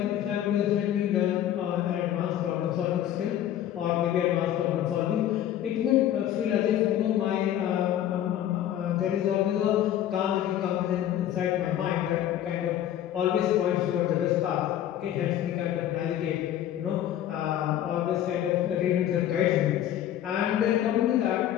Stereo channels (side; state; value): right; quieter; 11.5 dB